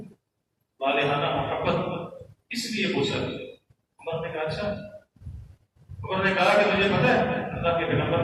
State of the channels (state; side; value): identical; both; correlation 1.00